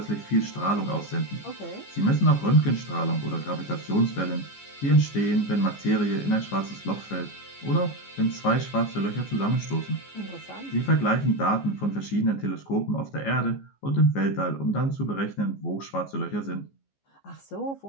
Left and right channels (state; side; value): late; right; 14 ms